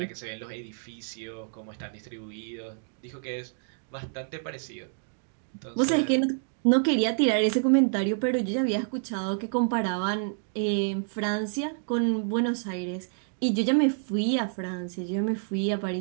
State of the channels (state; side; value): silent; left; digital silence